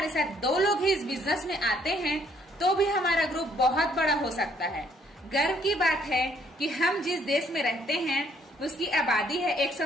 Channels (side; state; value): both; normal; correlation 0.66